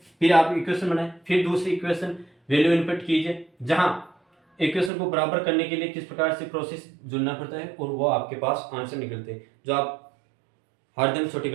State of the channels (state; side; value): drops out; left; at 4.9 s